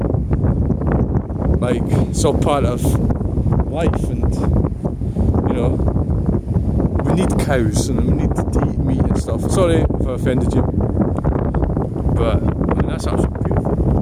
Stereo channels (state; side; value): identical; both; correlation 1.00